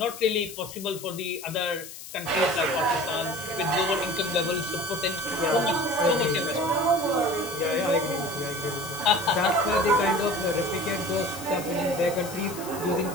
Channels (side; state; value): left; noise; hiss, 13 dB below the sound